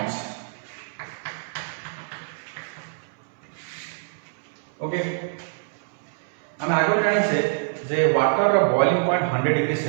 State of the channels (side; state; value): left; silent; 61 dB below the other